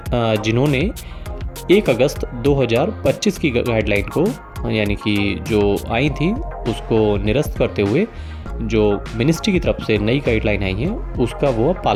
1 अगस्त 2025 की गाइडलाइन को यानी कि जो आई थी उसको निरस्त करते हुए जो मिनिस्ट्री की तरफ से नई गाइडलाइन आई है उसका वो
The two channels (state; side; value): identical; both; correlation 1.00